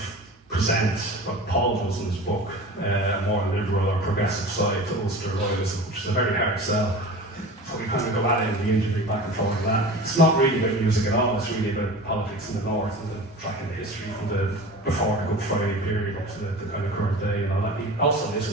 present what Paul does in his book, a more liberal or progressive side to Ulster loyalism, which is a very hard sell. So we kind of go at it in the interview back and forth on that. It's not really about music at all, it's really about politics in the north and the tracking the history from the before the Good Friday period up to the kind of current day and all that. He also lives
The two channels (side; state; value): both; normal; correlation 0.36